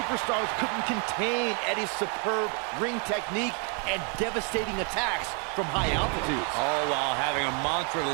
couldn't contain Eddie's superb ring technique and devastating attacks from high altitudes. All while having a mantra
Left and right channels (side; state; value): left; quieter; 38.2 dB